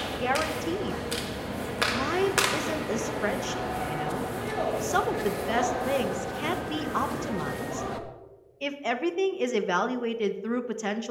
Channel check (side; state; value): both; identical; correlation 1.00